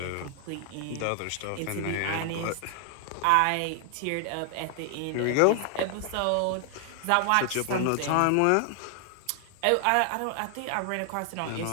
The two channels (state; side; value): different; both; correlation 0.00